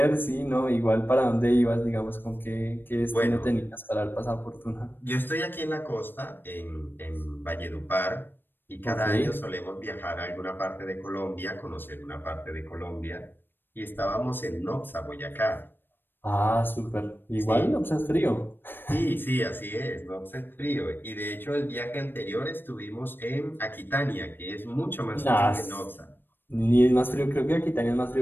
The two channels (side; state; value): right; late; 0.096 ms